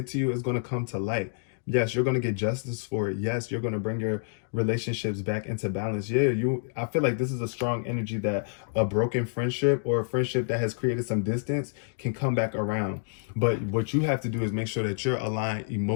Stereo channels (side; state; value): right; silent; digital silence